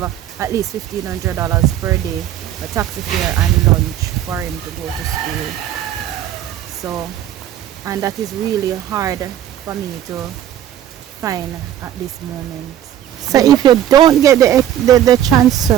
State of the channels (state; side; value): quieter; left; 11.3 dB